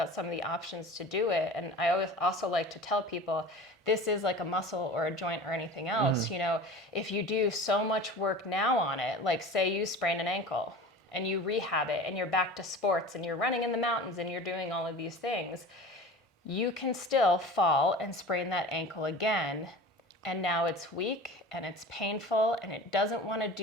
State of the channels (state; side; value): normal; both; correlation 0.37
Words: some of the options to do it. And I always also like to tell people this is like a muscle or a joint or anything else. If you do so much work now on it, like say you sprain an ankle and you rehab it and you're back to sports and you're running in the mountains and you're doing all of these things, you can still fall and sprain that ankle again. And now it's weak and it's painful and it doesn't want to